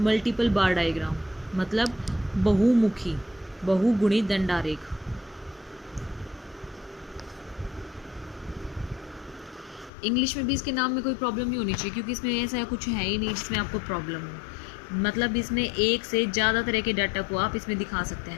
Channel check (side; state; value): right; drops out; at 9.9 s